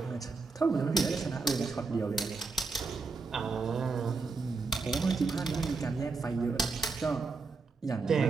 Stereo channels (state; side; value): quieter; left; 4.3 dB